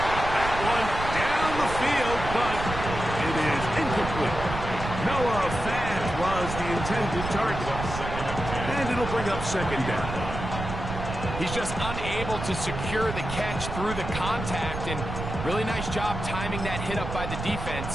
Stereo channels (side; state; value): right; noise; rumble, 6 dB below the sound